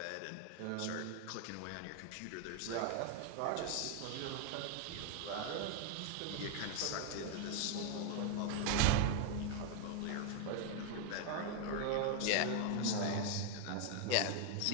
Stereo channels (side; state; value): both; different; correlation 0.00